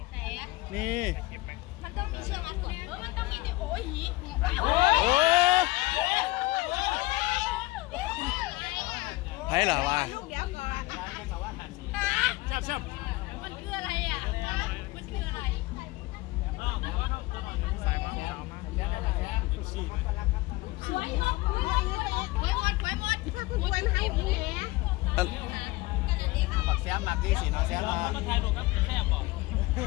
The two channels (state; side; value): quieter; right; 20.9 dB